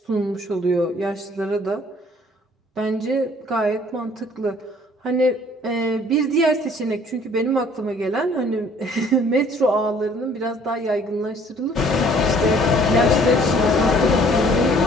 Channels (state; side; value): normal; both; correlation 0.57